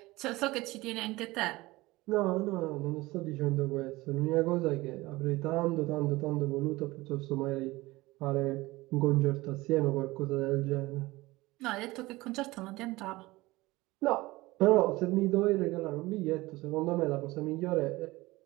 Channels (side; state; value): left; quieter; 20.2 dB